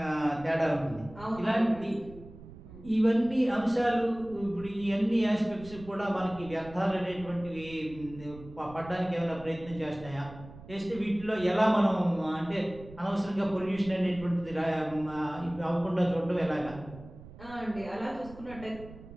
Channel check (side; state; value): right; noise; rumble, 17 dB below the sound